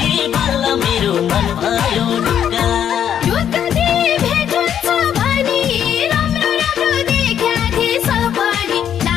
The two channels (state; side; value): quieter; right; 9.3 dB